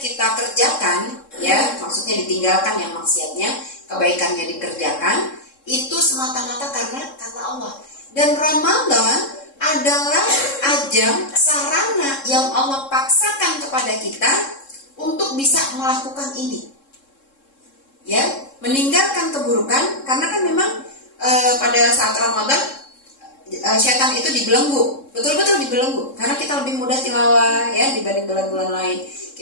kita kerjakan, ya, maksudnya ditinggalkan yang maksiatnya, kebaikannya dikerjakan, itu semata-mata karena Allah. Dan Ramadan adalah ajang, sarana yang Allah paksakan kepada kita untuk bisa melakukan ini, ya, meninggalkan keburukan. Karena kan memang pada saat Ramadan setan itu dibelenggu, betul-betul dibelenggu, karena kita lebih mudah tilawah, ya, dibanding bulan-bulan lain.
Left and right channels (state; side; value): late; right; 3.7 ms